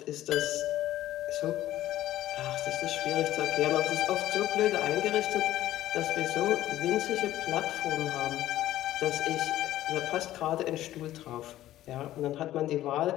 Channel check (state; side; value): quieter; right; 14.0 dB